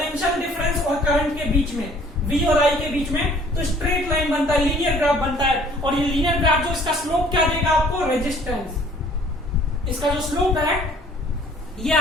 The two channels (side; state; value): both; normal; correlation 0.56